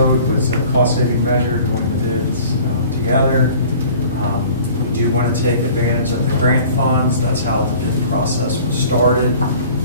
was a cost-saving measure to win the bids together. We do want to take advantage of the grant funds. That's how the bid process was started.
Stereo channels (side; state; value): both; inverted; correlation -0.47